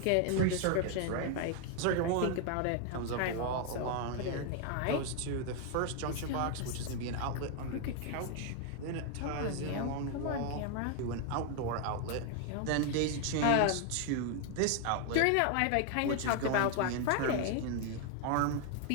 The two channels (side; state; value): both; different; correlation 0.00